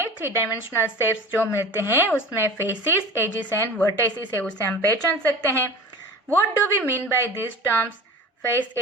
3 डायमेंशनल शेप्स जो मिलते हैं उसमें फेसिस, एजिस एंड वर्टाइसिस है उसे हम पहचान सकते हैं। What do we mean by this terms, face,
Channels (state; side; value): normal; both; correlation 0.36